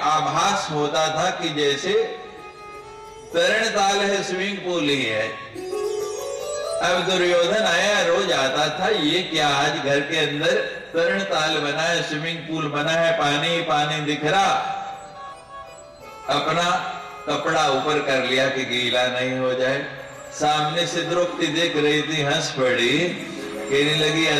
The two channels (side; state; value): both; identical; correlation 1.00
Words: आभास होता था कि जैसे तरण ताल है, स्विमिंग पूल ही है। अब दुर्योधन आया, रोज आता था, ये क्या आज घर के अंदर तरण ताल बना है, स्विमिंग पूल बना है, पानी पानी दिख रहा। अपना कपड़ा ऊपर कर लिया कि गीला नहीं हो जाए। सामने से द्रौपदी देख रही थी, हंस पड़ी, कहने लगी